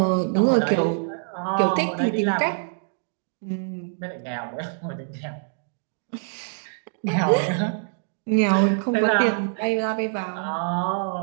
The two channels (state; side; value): silent; left; digital silence